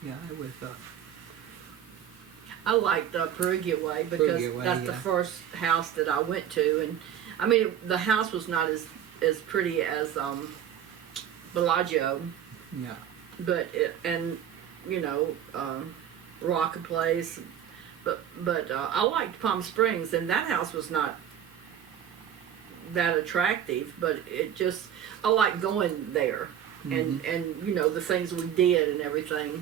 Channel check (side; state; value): left; quieter; 9.7 dB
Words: Yeah, it was. I liked Perugia Way because that's the first house that I went to, and I mean the house was not as pretty as Bellagio. Yeah. But Rock Place, but I liked Palm Springs, and that house was not that attractive, but I liked going there, and you know the things we did and